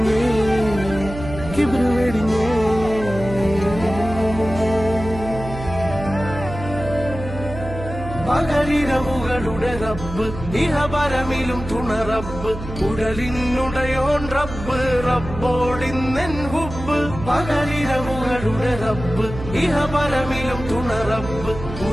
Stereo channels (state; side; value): noise; right; hum, 10 dB below the sound